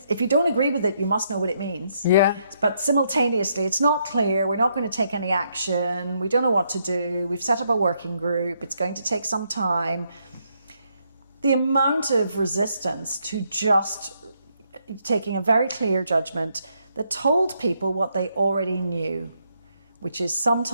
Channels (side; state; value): both; inverted; correlation -0.76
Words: you don't agree with it, you must know what it means. Yeah. But simultaneously, it's not clear. We're not going to take any action. We don't know what to do. We've set up a working group. It's going to take some time. The amount of resistance to just taking a very clear judgment that told people what they already knew, which is